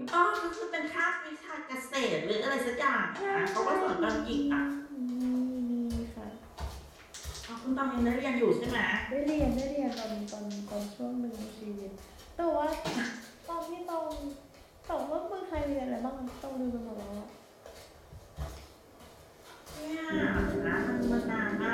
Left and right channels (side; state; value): both; identical; correlation 1.00